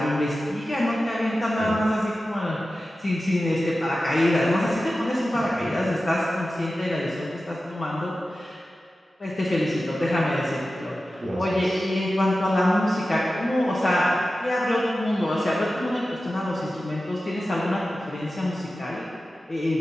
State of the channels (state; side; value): normal; both; correlation 0.94